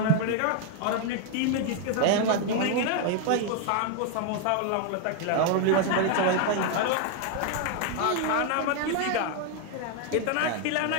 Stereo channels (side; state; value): both; different; correlation 0.00